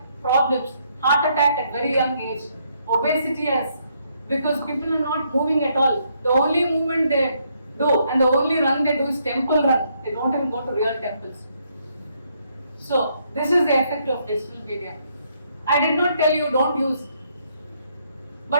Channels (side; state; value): both; inverted; correlation -0.73